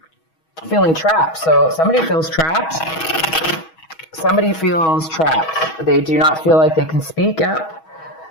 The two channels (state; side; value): late; right; 6.2 ms